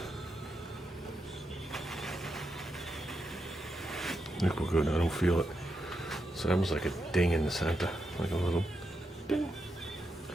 I think we're good. I don't feel it. So that was like a ding in the center, like a little ding.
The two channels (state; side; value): normal; both; correlation 0.85